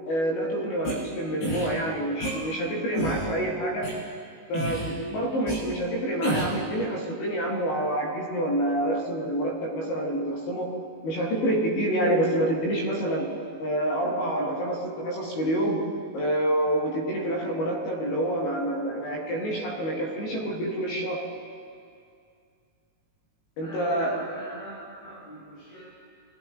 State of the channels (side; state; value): right; late; 19 ms